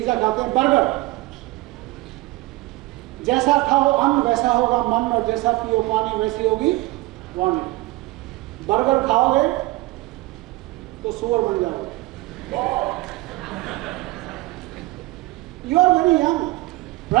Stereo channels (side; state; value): left; quieter; 20.2 dB